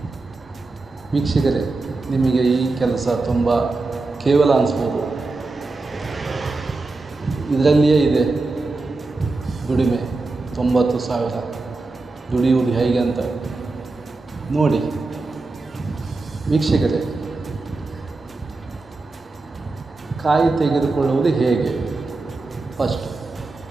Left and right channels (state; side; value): quieter; left; 3.5 dB